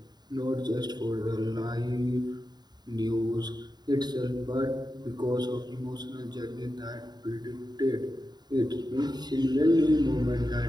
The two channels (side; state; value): left; late; 0.20 ms